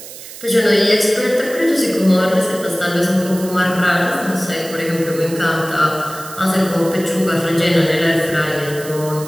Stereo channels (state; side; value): noise; right; hiss, 14 dB below the sound